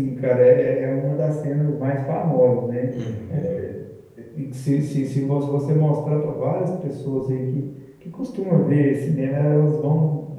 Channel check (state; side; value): identical; both; correlation 1.00